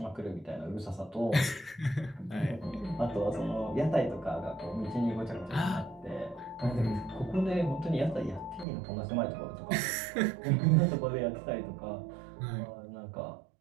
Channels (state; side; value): drops out; left; at 8.7 s